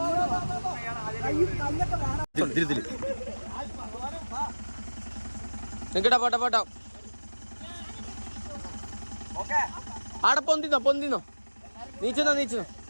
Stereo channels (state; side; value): inverted; both; correlation -1.00